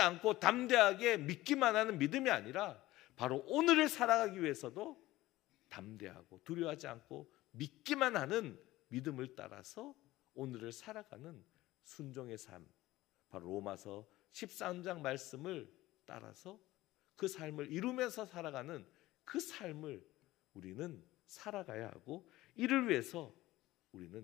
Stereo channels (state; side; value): quieter; right; 17.2 dB